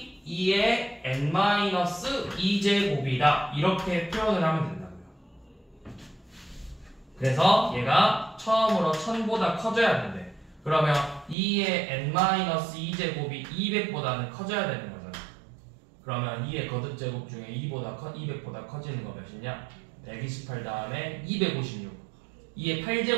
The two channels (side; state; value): left; drops out; at 11.4 s